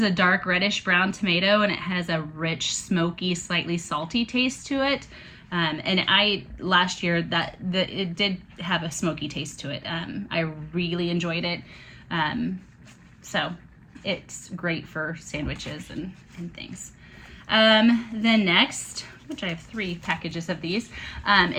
a dark reddish brown tomato, and it has a rich, smoky, slightly salty taste to it. And last year it did have a smoky taste to it. I really enjoyed it. So it's great for sandwiches and things. Then next, which I have 3 packages of these,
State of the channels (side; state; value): both; identical; correlation 1.00